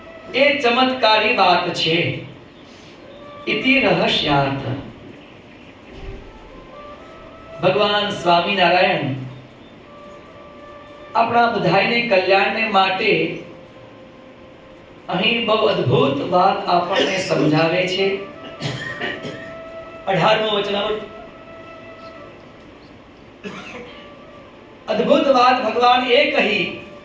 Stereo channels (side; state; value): both; identical; correlation 1.00